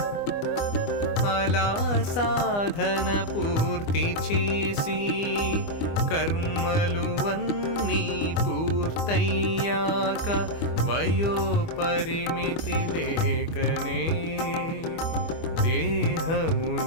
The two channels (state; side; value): late; right; 25 ms